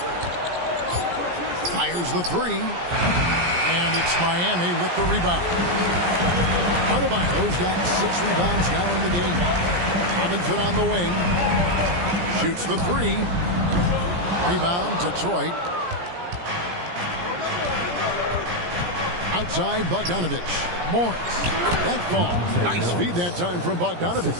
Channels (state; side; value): late; left; 17 ms